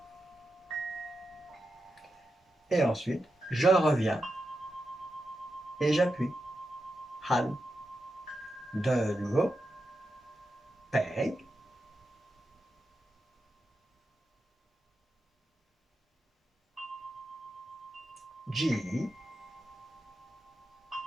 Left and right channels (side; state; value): both; normal; correlation 0.88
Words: Et ensuite, je reviens et j'appuie. Han. De nouveau. Peg. G.